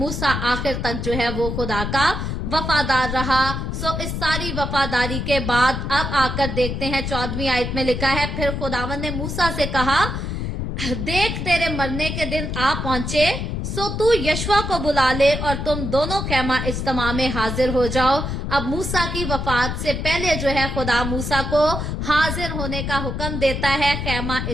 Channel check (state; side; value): noise; left; rumble, 3 dB below the sound